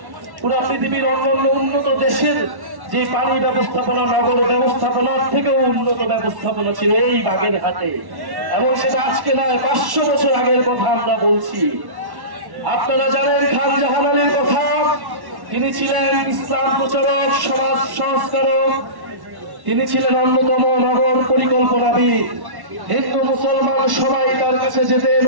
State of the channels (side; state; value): left; late; 1.1 ms